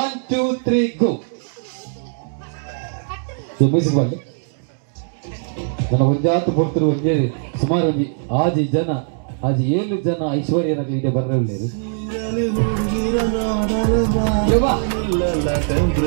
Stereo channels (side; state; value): left; silent; digital silence